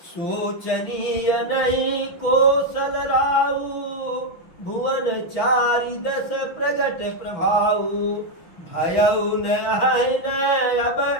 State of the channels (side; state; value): right; late; 6.0 ms